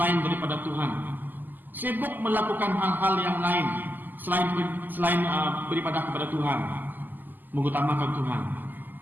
daripada Tuhan. Sibuk melakukan hal-hal yang lain selain beribadah kepada Tuhan, mengutamakan Tuhan,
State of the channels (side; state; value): left; late; 0.087 ms